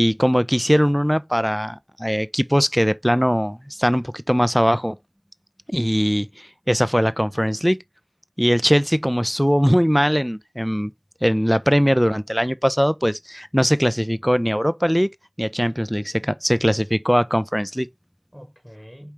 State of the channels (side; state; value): both; identical; correlation 1.00